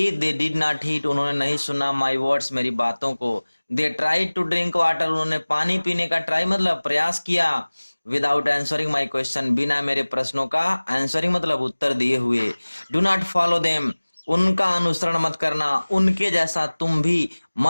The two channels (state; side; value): inverted; both; correlation -1.00